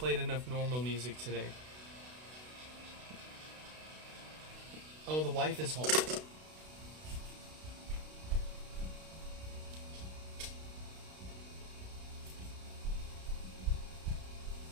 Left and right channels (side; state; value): left; late; 32 ms